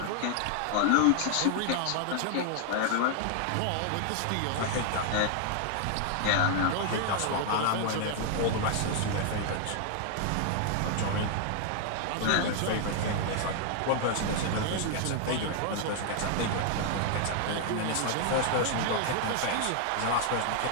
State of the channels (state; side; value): different; both; correlation 0.00